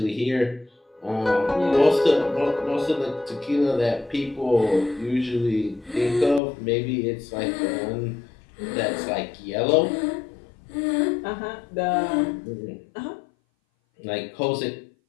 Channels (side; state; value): right; drops out; at 6.4 s